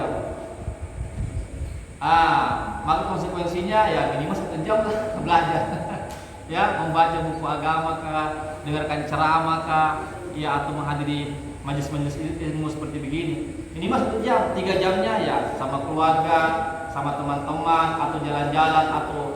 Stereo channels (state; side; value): identical; both; correlation 1.00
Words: Maka konsekuensinya ya minimal 1 jam lah belajar. Ya, membaca buku agama kah, dengarkan ceramah kah, ya atau menghadiri majelis-majelis ilmu seperti begini. Minimal 1 jam, 3 jamnya ya sama keluarga, sama teman-teman, atau jalan-jalan,